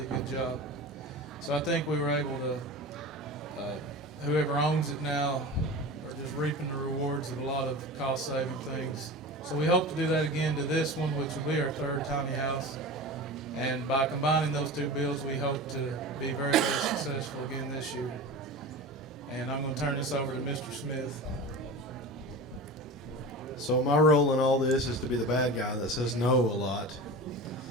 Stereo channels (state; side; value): normal; both; correlation 0.31